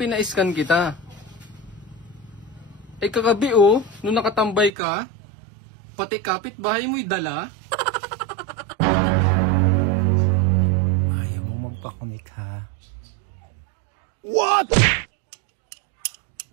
kita. Ay kagabi oh, nung nakatambay ka, pati kapitbahay mo'y dala. Ayaw mo magpakonect ha. What?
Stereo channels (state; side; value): drops out; left; at 4.7 s